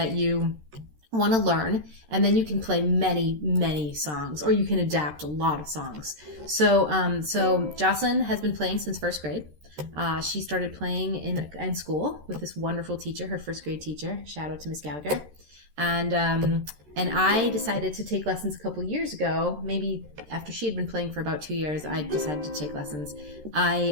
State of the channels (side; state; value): left; late; 13 ms